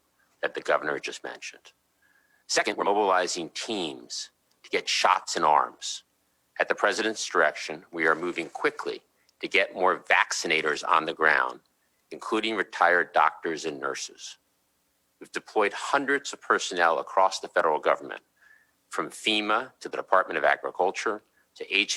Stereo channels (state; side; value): identical; both; correlation 1.00